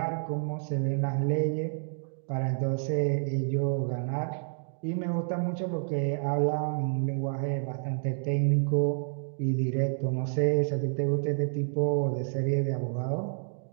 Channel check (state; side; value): silent; left; digital silence